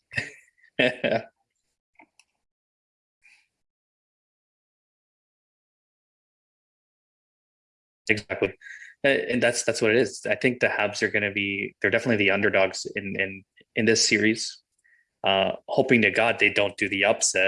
Exactly. And that's what it is. I think the Habs are going to be. They're definitely the underdogs in this series. Hoping to God they don't do the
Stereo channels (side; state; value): both; identical; correlation 1.00